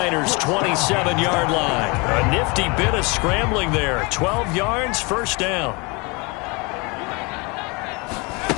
27-yard line. A nifty bit of scrambling there. 12 yards, 1st down.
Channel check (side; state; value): right; quieter; 28.3 dB